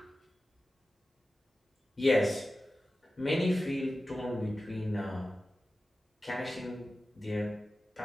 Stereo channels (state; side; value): normal; both; correlation 0.95